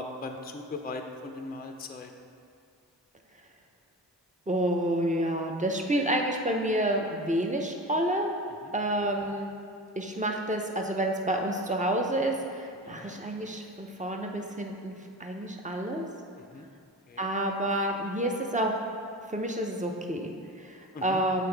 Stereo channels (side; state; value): both; normal; correlation 0.31